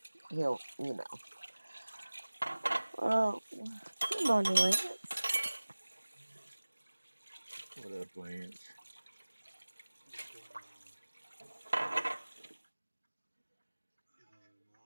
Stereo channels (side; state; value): both; inverted; correlation -1.00